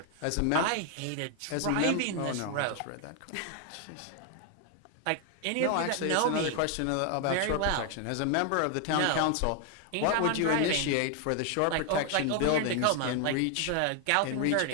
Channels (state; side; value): different; both; correlation 0.00